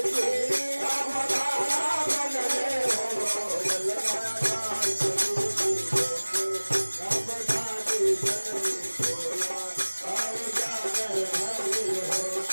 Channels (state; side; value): inverted; both; correlation -1.00